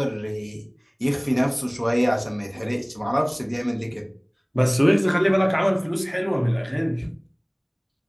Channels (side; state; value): both; identical; correlation 1.00